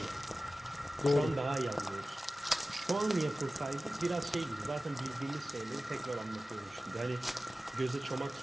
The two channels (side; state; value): both; normal; correlation 0.96